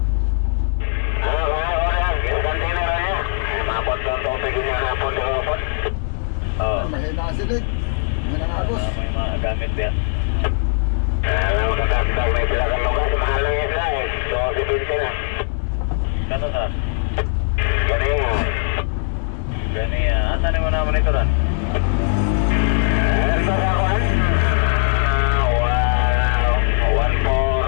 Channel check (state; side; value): silent; right; 66 dB below the other